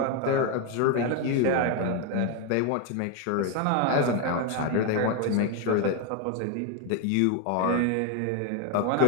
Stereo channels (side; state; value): both; different; correlation 0.02